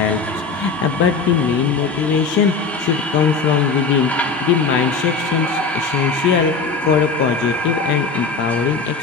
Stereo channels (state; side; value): quieter; right; 4.7 dB